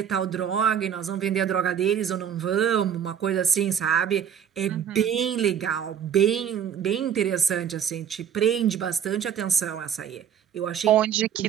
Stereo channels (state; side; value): quieter; left; 8.7 dB